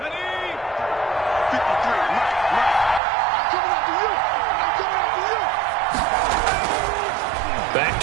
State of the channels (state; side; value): drops out; left; at 3.0 s